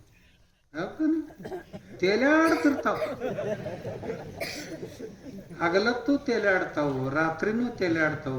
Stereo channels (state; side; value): identical; both; correlation 1.00